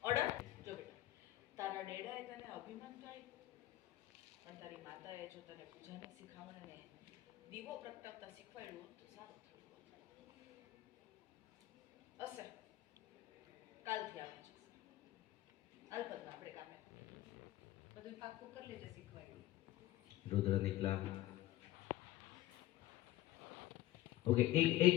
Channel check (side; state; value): right; quieter; 15.6 dB